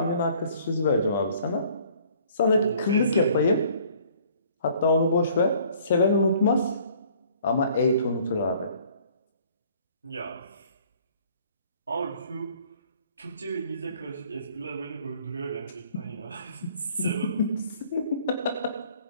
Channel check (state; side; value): inverted; both; correlation -0.57